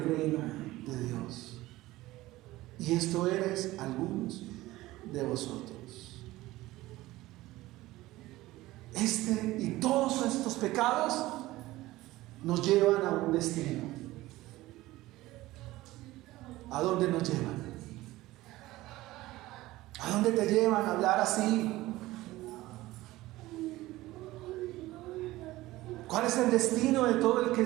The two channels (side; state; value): left; quieter; 17.7 dB